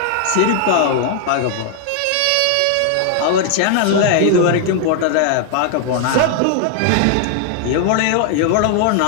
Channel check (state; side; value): different; both; correlation 0.00